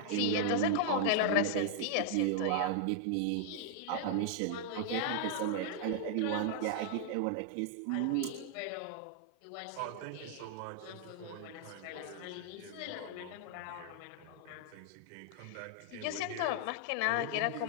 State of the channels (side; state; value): both; different; correlation -0.01